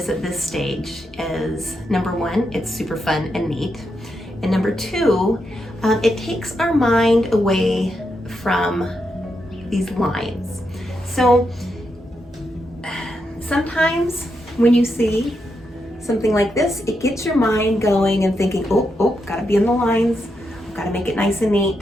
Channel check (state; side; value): normal; both; correlation 0.83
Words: at this stage is, number one, it's super fun and neat. And number two, it takes our mind away from these lines. So sometimes when you see something like this, it gets your mind going and thinking, oh, gotta be in the lines, gotta make it nice and